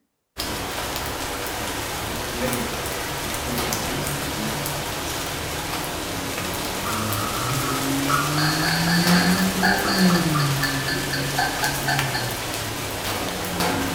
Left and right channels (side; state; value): both; identical; correlation 1.00